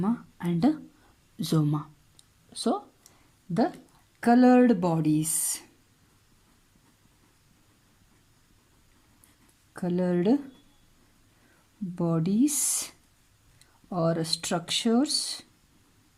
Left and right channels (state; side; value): identical; both; correlation 1.00